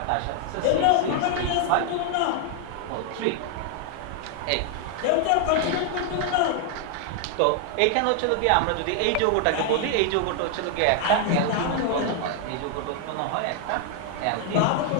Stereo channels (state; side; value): different; both; correlation 0.00